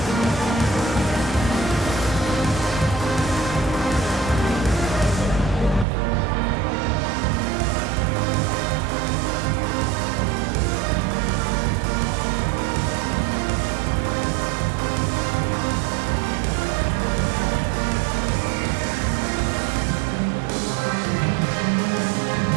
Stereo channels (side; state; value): left; drops out; at 5.9 s